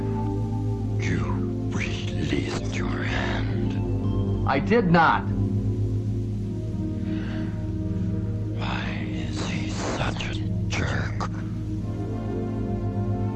You released your hand. I did not. Why is he such a jerk?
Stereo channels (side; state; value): both; identical; correlation 1.00